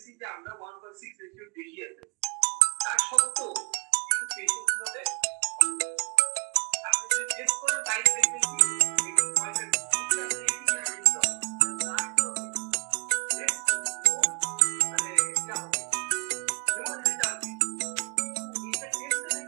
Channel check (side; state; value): left; quieter; 32.2 dB